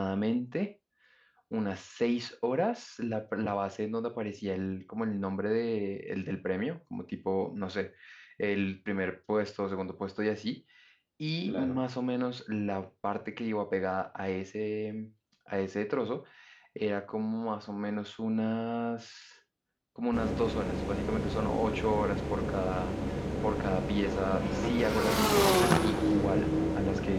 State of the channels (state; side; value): identical; both; correlation 1.00